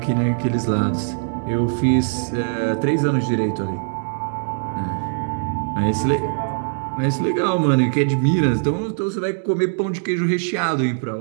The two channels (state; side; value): silent; left; digital silence